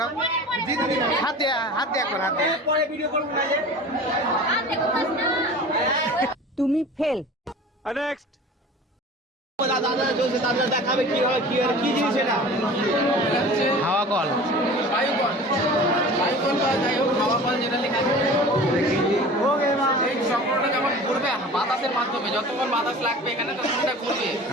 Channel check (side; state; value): both; normal; correlation 0.40